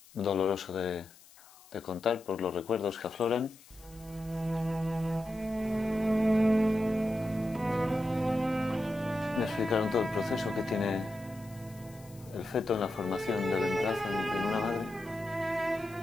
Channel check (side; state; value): left; noise; hiss, 24 dB below the sound